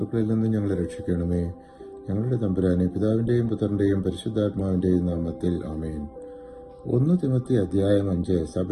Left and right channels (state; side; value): identical; both; correlation 1.00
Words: നിന്ന് ഞങ്ങളെ രക്ഷിക്കണമേ. ഞങ്ങളുടെ തമ്പുരാനെ, പിതാവിന്റെയും പുത്രന്റെയും പരിശുദ്ധാത്മാവിന്റെയും നാമത്തിൽ ആമേൻ. 1 തിമോത്തി അധ്യായം 5